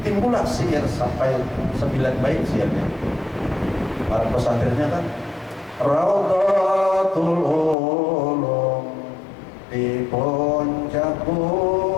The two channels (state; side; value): drops out; right; at 7.8 s